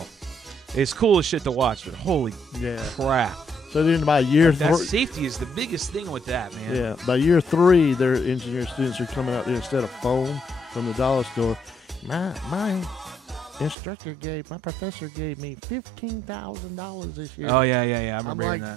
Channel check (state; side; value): drops out; left; at 13.8 s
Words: It's cool as shit to watch, but holy crap. So then by year That 3, safety is the biggest thing with that, man. yeah, by year 3, their engineer students are coming out there instead of foam from the dollar store. My instructor my professor gave me $15,000 this year. Oh, yeah. I I'm remember like,